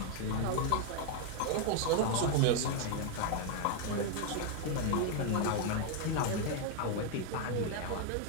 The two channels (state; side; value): different; both; correlation 0.01